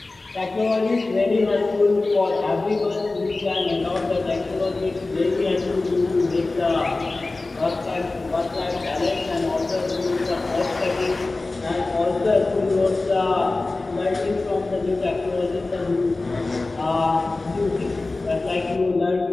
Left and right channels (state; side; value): quieter; right; 3.3 dB